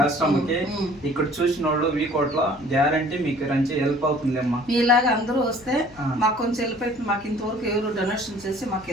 ఆశ్రమంకి ఇక్కడ చూసిన వాళ్ళు వీకోట్లో గ్యారంటీ మీకు రంచి హెల్ప్ అవుతుందమ్మా. మీలాగా అందరూ వస్తే మాకు కొంచెం హెల్ప్ అవుతుంది. మాకు ఇంతవరకు ఎవరు డొనేషన్ చేసి మాకు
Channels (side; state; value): left; noise; hum, 23 dB below the sound